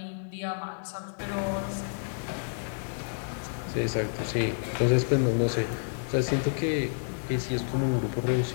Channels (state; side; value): silent; right; 58 dB below the other